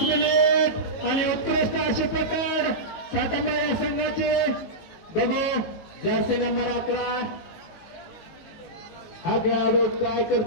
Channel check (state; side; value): late; right; 18 ms